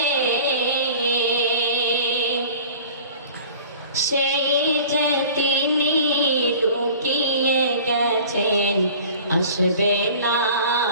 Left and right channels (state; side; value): inverted; both; correlation -0.44